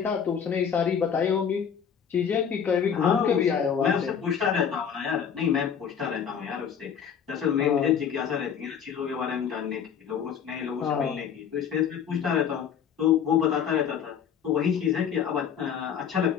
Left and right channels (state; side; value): quieter; right; 7.8 dB